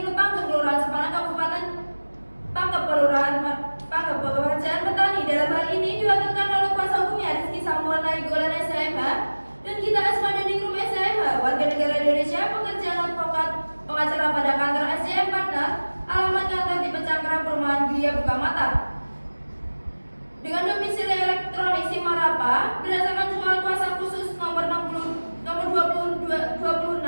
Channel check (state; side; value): inverted; both; correlation -1.00